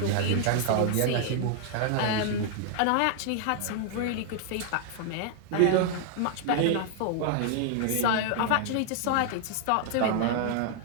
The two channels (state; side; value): different; both; correlation 0.00